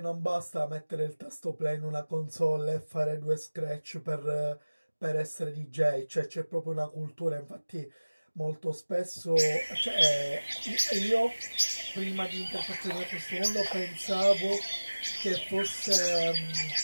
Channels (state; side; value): inverted; both; correlation -1.00